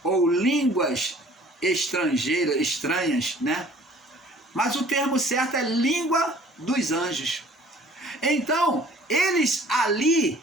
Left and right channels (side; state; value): both; normal; correlation 0.52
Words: ou línguas estrangeiras, estranhas, né? Mas o termo certo é língua dos anjos. Então, eles ali,